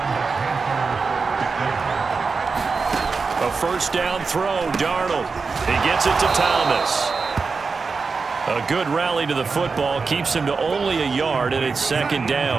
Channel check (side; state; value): left; quieter; 4.7 dB